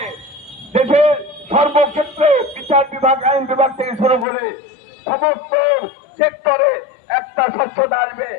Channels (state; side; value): drops out; right; at 4.2 s